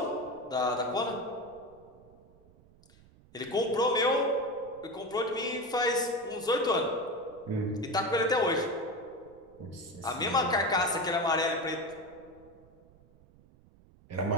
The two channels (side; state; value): right; noise; rumble, 26 dB below the sound